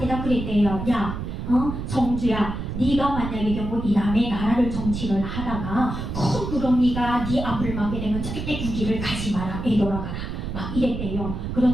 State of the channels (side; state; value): right; noise; rumble, 5 dB below the sound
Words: 그랬대요. 야, 정주야, 네가 만약에 경우 이남의 나라를 정치를 하다가 큰 구렁이가 네 앞을 막게 되면 절대 그 길을 가지 마라, 되돌아가라, 막 이랬대요.